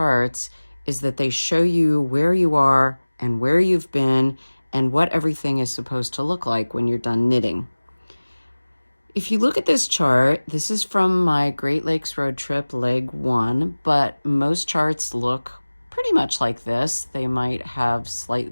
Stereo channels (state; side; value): inverted; both; correlation -1.00